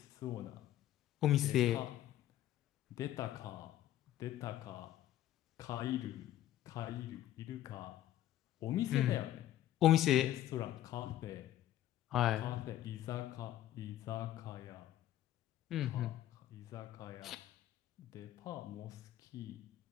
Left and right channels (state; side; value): quieter; right; 13.1 dB